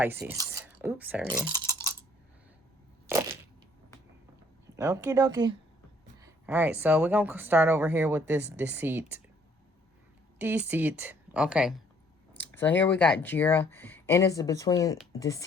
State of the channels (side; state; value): both; normal; correlation 0.62